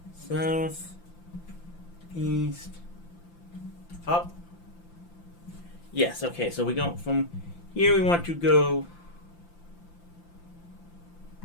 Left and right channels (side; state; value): right; late; 5.8 ms